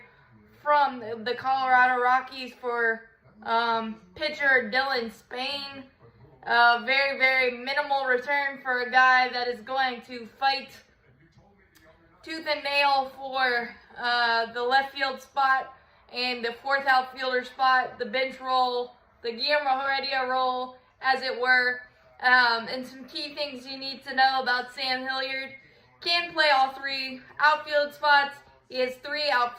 from the Colorado Rockies for pitcher Dylan Spain. Very, very minimal return for a guy that is going to fight tooth and nail for the left field spot and the fourth outfielder spot, the bench role, the Guillermo Heredia role, as it were. And some key things you need to know about Sam Hilliard. Can play all three outfield spots. He has 3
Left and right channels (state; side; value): identical; both; correlation 1.00